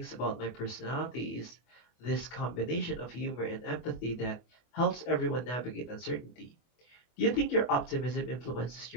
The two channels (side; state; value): right; late; 24 ms